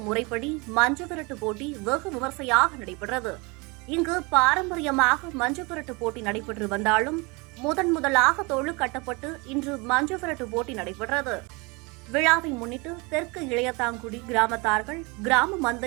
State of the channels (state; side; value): quieter; left; 27.4 dB